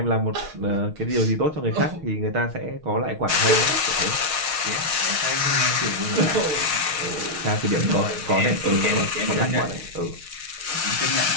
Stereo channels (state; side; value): late; left; 6.4 ms